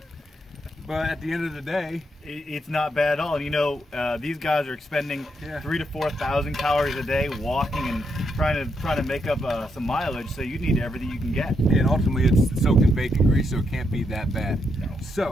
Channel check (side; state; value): both; normal; correlation 0.80